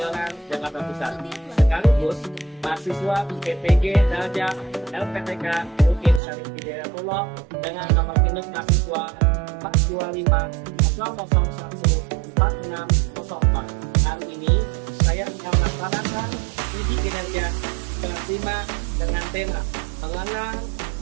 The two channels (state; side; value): drops out; left; at 6.2 s